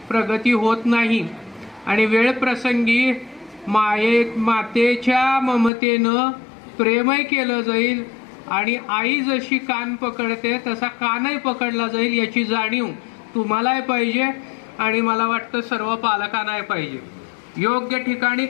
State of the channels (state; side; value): drops out; right; at 5.7 s